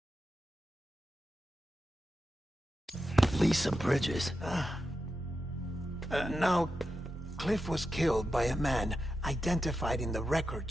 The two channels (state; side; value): normal; both; correlation 0.89